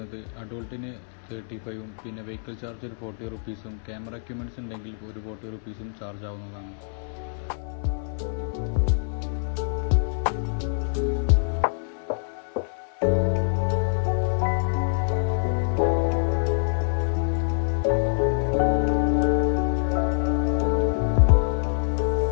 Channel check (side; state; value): right; silent; 59 dB below the other